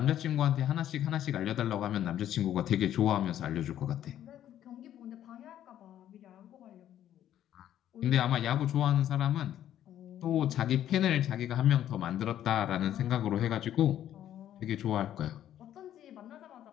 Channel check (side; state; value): right; quieter; 11.3 dB